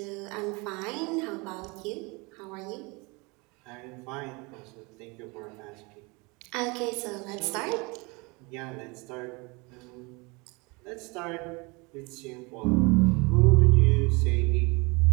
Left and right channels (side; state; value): left; quieter; 27.4 dB